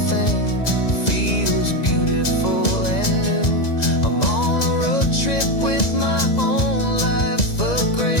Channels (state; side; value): late; right; 1.9 ms